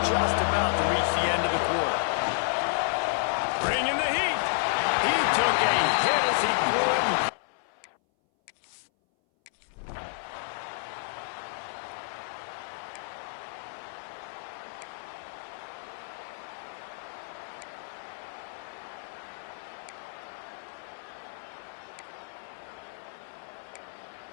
just about to reach the end of the quarter. Bringing the heat. He took a hit as he threw it.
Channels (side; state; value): right; silent; 57 dB below the other